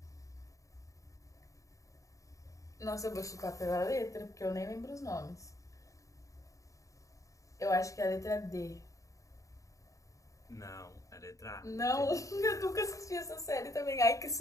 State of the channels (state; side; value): late; right; 0.16 ms